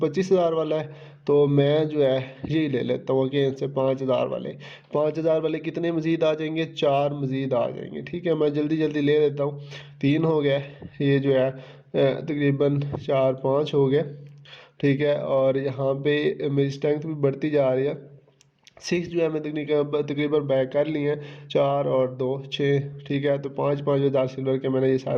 वाला है। तो मैं जो है यही ले लेता हूँ अगेन से 5,000 वाले। 5,000 वाले कितने मज़ीद आ जाएंगे, 4 मज़ीद आ जाएंगे, ठीक है। मैं जल्दी जल्दी ले लेता हूँ, 3 हो गए। ये जो है तकरीबन 4-5 हो गए, ठीक है। और यहाँ पे मेरी स्ट्रेंथ भी बढ़ती जा रही है। 6 जो है मैं तकरीबन बैक कर लिए हैं, 4 और 2 6, ठीक है। तो 5,000 सिल्वर के मैंने ये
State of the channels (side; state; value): both; identical; correlation 1.00